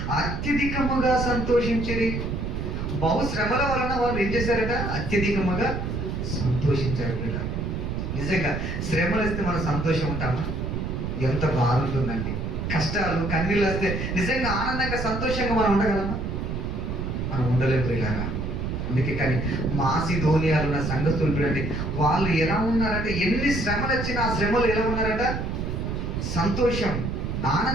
అత్యధికముగా సంతోషించిరి. బహుశ్రమల వలన వాళ్ళు ఏం చేశారట, అత్యధికముగా సంతోషించారు. వీళ్ళ నిజంగా శ్రమలు వస్తే మనం సంతోషం ఉంటామా? ఎంత బాగుంటుందండి. కష్టాలు కన్నీళ్ళు వస్తే నిజంగా ఆనందంగా సంతోషంగా మనం ఉండగలమా? మనం ఉండలేదు ఇలాగా. అందుకే కానీ మాసిదోనియాలో ఉన్న సంఘస్థులు చూడండి, వాళ్ళు ఎలా ఉన్నారంటే ఎన్ని శ్రమలు వచ్చినా ఆ శ్రమలు ఎలా ఉన్నారట, సంతోషం,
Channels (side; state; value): right; noise; rumble, 3 dB below the sound